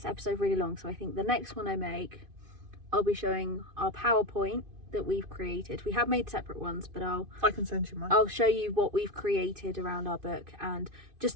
episode really long. So I think the next one I make, I'll be showing our PowerPoint that we've created. We have made separate ones, but I can send you mine. I'll show you what we've created around our book and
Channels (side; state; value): left; late; 2.5 ms